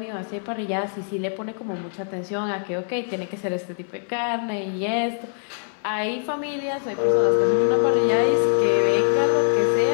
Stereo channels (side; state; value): right; silent; 62 dB below the other